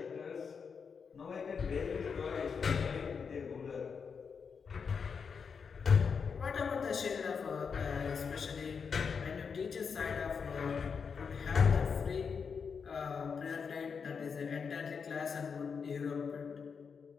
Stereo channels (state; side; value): quieter; right; 6.0 dB